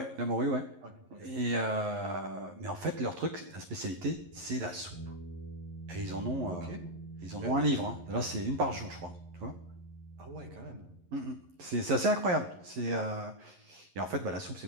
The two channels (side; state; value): left; late; 11 ms